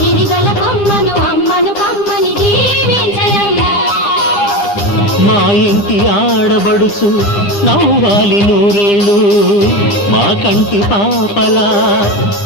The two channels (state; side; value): late; right; 9.9 ms